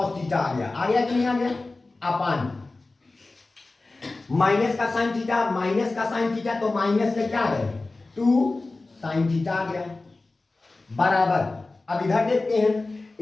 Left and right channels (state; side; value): quieter; right; 3.3 dB